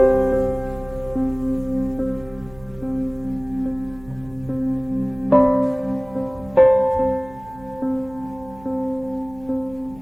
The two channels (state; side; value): noise; right; hum, 21 dB below the sound